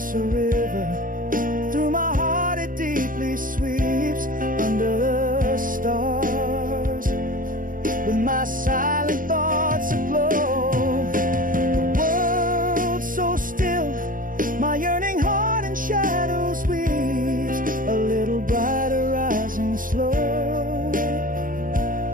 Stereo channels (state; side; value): late; left; 0.40 ms